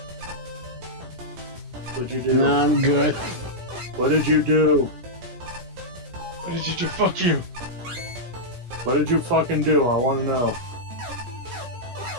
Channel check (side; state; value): left; late; 16 ms